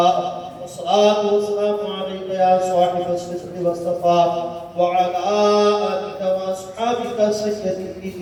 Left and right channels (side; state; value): both; identical; correlation 1.00